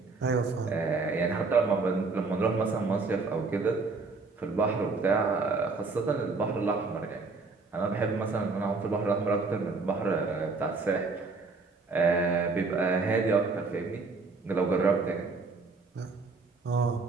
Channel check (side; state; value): left; quieter; 4.1 dB